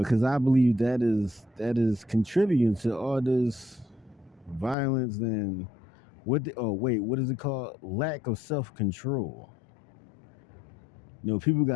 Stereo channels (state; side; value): drops out; right; at 4.8 s